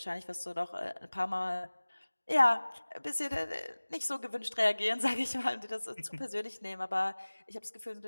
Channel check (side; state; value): both; inverted; correlation -1.00